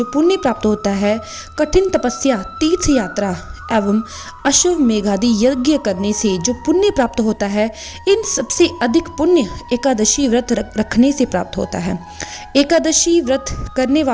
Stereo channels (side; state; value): both; identical; correlation 1.00